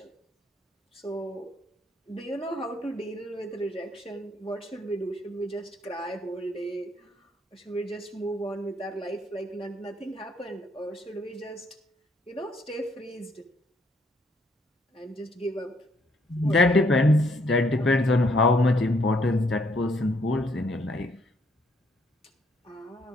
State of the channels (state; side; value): normal; both; correlation 0.69